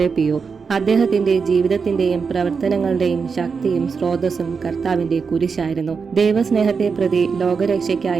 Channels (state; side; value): quieter; left; 5.4 dB